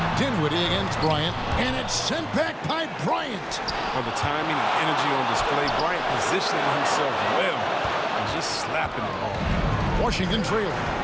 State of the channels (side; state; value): both; identical; correlation 1.00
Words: Dinwiddie against Bryant, and it's sent back by Bryant. Well, the timing and energy on display. Bryant positioning himself well and just slapping the ball. Washington trailing.